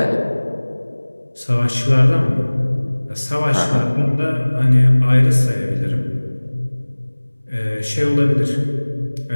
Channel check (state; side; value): inverted; both; correlation -1.00